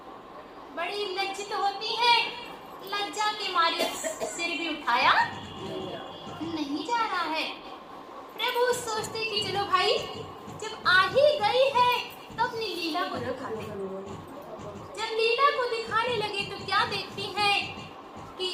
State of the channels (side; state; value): both; identical; correlation 1.00